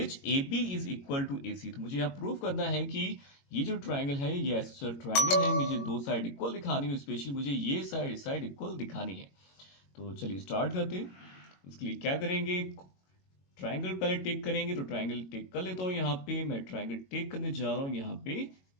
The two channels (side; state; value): right; late; 22 ms